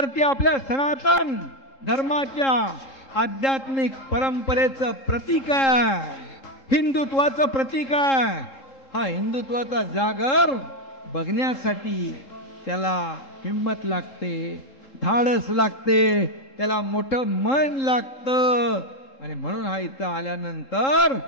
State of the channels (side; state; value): right; late; 3.7 ms